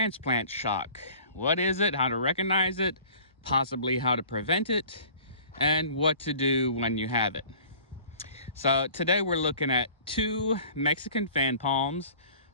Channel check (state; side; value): inverted; both; correlation -0.48